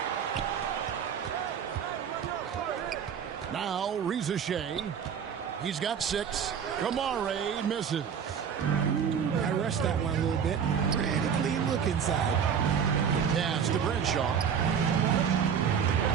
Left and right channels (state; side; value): quieter; left; 7.5 dB